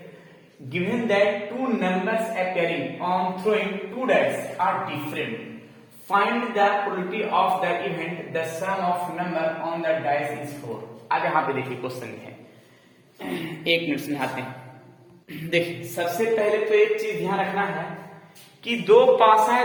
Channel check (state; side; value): identical; both; correlation 1.00